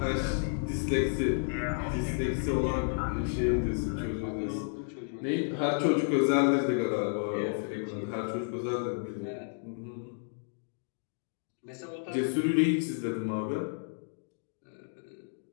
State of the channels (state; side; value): silent; right; digital silence